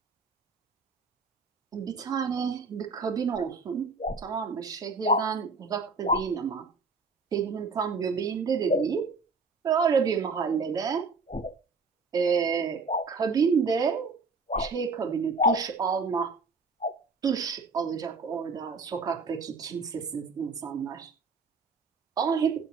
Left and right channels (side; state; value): left; quieter; 4.1 dB